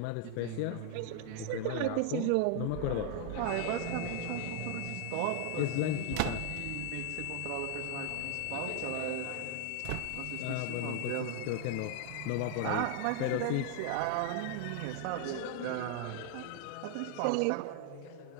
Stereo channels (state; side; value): different; both; correlation 0.00